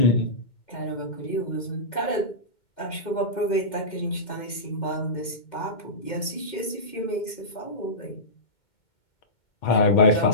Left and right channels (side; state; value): right; late; 2.0 ms